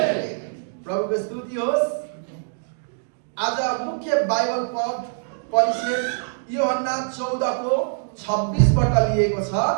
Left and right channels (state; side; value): silent; left; digital silence